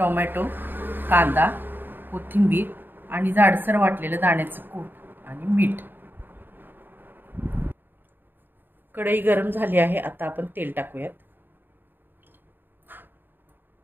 कांदा, कोथिंबीर आणि जाडसर वाटलेलं दाण्याचं कूट आणि मीठ। कढई गरम झाली आहे, आता आपण तेल टाकूयात।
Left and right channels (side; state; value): left; late; 0.094 ms